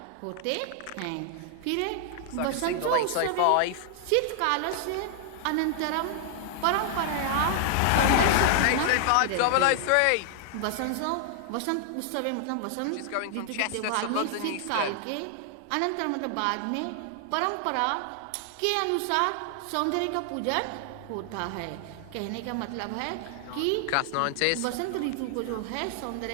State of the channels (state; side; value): different; both; correlation 0.00